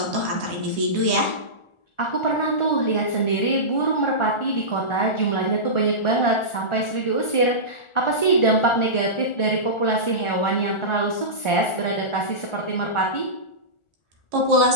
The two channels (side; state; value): right; late; 1.4 ms